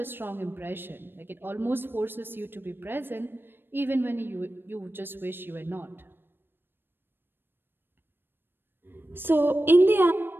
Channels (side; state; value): left; late; 0.099 ms